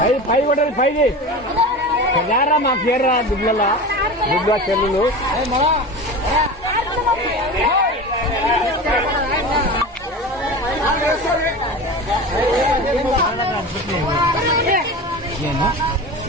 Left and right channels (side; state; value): both; normal; correlation 0.30